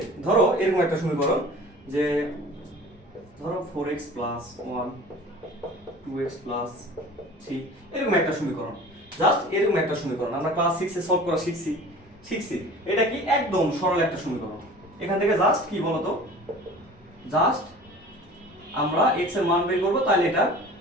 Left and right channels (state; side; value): normal; both; correlation 0.42